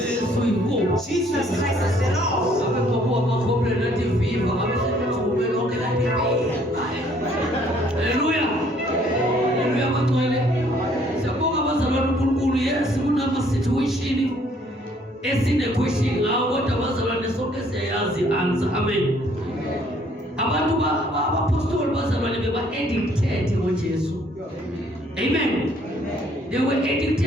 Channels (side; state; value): both; normal; correlation 0.62